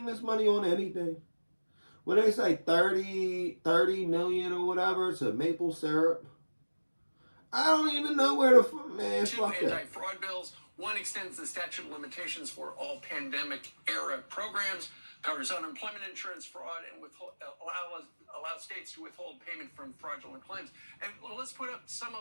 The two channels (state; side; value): inverted; both; correlation -1.00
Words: this money on anything. When they say 30 million or whatever to maple syrup, I don't even know where the man. Two anti-fraud bills. One extends the statute of limitations for all pandemic-era programs, covers unemployment insurance fraud, and allows states to withhold payment from fraudulent claims. And let's put up some